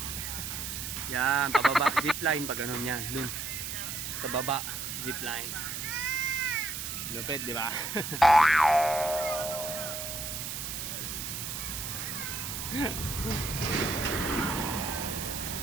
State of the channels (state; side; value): noise; right; hiss, 5 dB below the sound